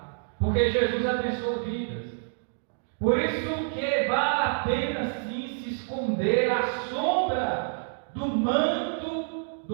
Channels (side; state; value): left; silent; digital silence